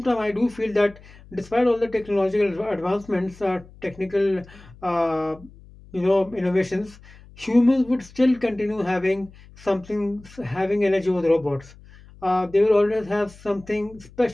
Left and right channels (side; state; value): left; noise; hum, 22 dB below the sound